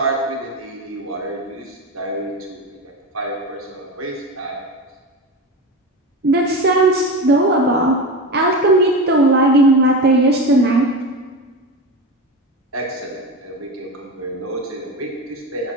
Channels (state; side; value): normal; both; correlation 0.23